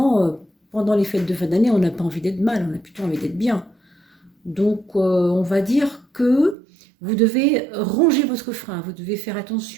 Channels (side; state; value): left; drops out; at 6.6 s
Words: pendant les fêtes de fin d'année, on n'a pas envie d'être mal, on a plutôt envie d'être bien. Donc, on va dire que vous devez ronger votre frein, vous devez faire